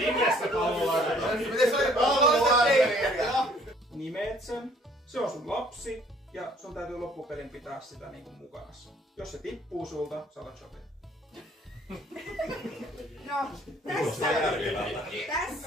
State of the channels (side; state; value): both; normal; correlation 0.58